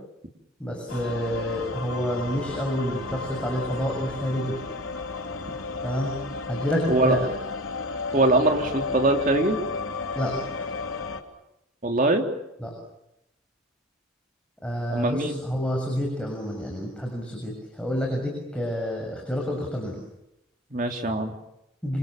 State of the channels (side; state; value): both; normal; correlation 0.37